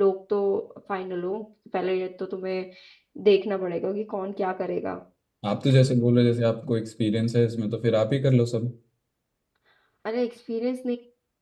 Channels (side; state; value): both; identical; correlation 1.00